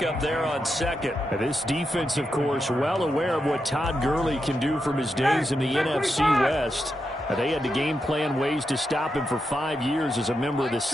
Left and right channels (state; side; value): normal; both; correlation 0.86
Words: there on second. And this defense, of course, well aware of what Todd Gurley can do from his days in the NFC West. They had to game plan ways to stop him for 5 years as a member of the